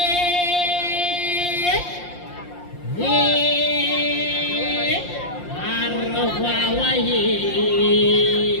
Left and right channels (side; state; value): right; late; 5.7 ms